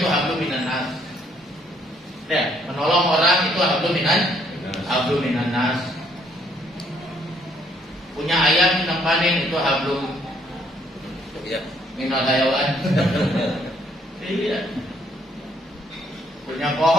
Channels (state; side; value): normal; both; correlation 0.67